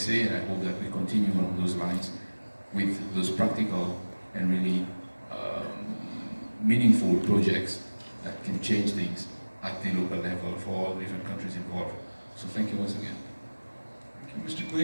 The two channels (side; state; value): both; inverted; correlation -1.00